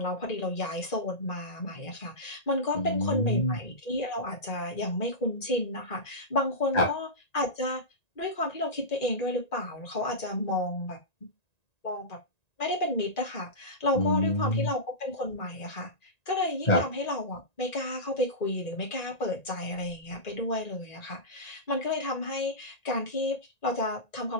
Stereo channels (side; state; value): right; late; 1.9 ms